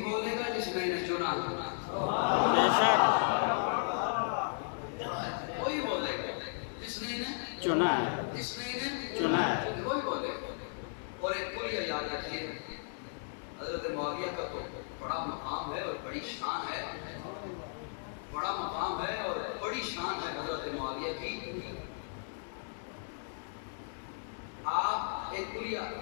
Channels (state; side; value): silent; right; digital silence